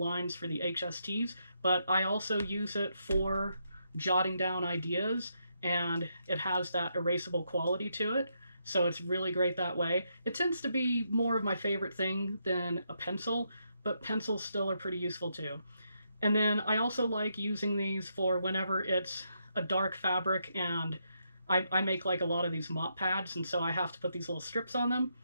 for the HSTs, but I also use it for jotting down ideas, and it has that erasable quality to it. So it's really great that way. It tends to be more of my favorite thing than a pencil, but pencils still are pretty useful too. And then I also like using these for whenever it's a dark fabric and I make like a lot of these mop pads, and so I have to put these little strips on them,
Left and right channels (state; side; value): inverted; both; correlation -0.79